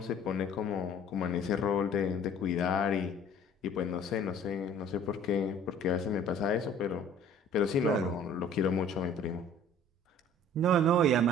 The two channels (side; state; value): both; normal; correlation 0.50